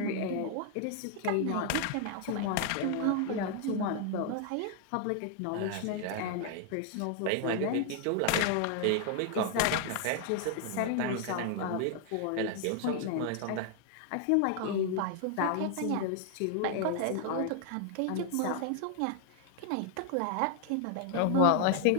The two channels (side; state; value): both; different; correlation 0.00